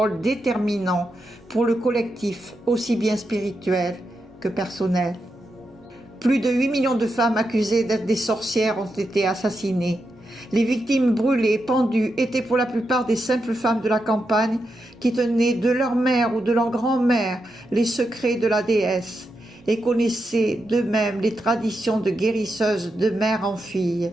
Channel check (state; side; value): normal; both; correlation 0.86